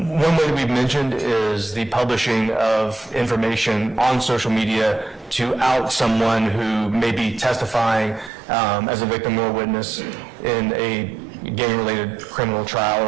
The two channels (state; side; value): drops out; left; at 8.3 s